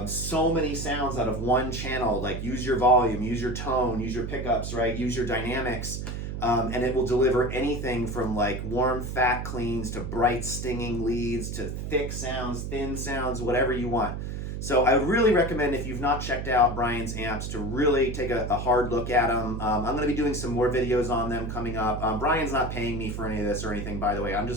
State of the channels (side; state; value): right; noise; hum, 5 dB below the sound